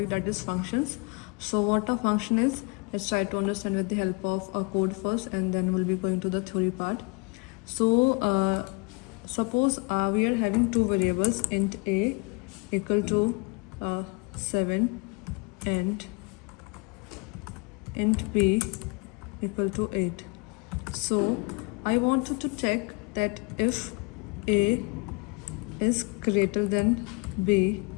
that is functions. So what a function is, let's try to understand with the help of a code first, and then we'll be going to the theory part. So suppose we are having two variables, int a equal to 7 and int b equal to 8. So I wanted to check that if a is greater than b,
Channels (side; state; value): right; quieter; 30.3 dB